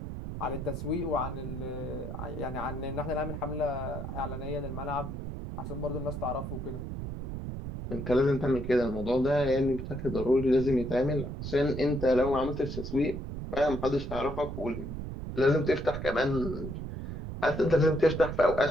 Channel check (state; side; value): noise; right; rumble, 7 dB below the sound